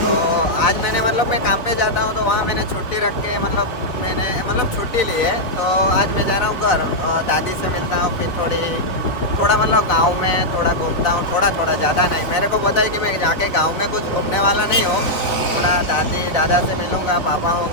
आज मैंने मतलब मैं काम पे जाता हूँ तो वहाँ मैंने छुट्टी रख के मैंने छुट्टी ली है। तो आज मैं जा रहा हूँ घर, और दादी से मिलता हूँ। फिर थोड़ा मतलब गांव में थोड़ा घूमता हूँ, थोड़ा ज़्यादा नहीं। मेरे को पता है कि मैं जाके गांव में कुछ घूमने वाला नहीं हूँ। थोड़ा दादी दादा से मिलूँगा, पापा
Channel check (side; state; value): right; late; 3.8 ms